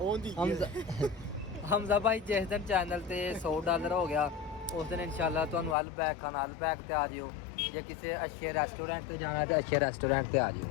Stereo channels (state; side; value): drops out; right; at 5.8 s